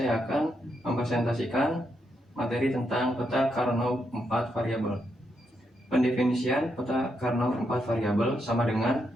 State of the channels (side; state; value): both; normal; correlation 0.81